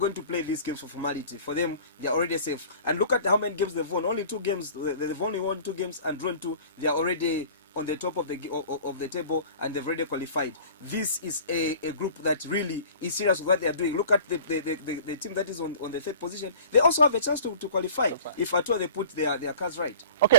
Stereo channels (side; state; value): both; inverted; correlation -0.44